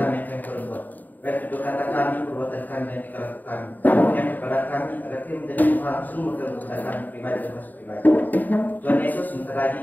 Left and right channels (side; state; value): right; late; 0.085 ms